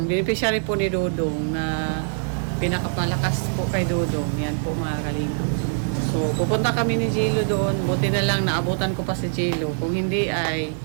beneficiary po ni Dodong na pinakapalakas po kay Dodong. Yan po mga kalingap. So pupunta kami ni Jilo doon. Buti na lang naabutan ko pa si Jilo. Kung hindi ay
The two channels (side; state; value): left; silent; digital silence